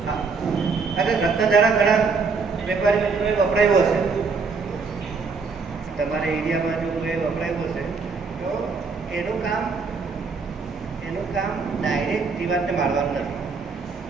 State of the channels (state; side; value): quieter; left; 4.8 dB